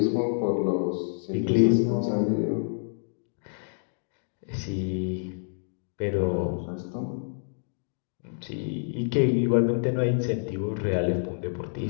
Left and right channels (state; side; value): silent; right; digital silence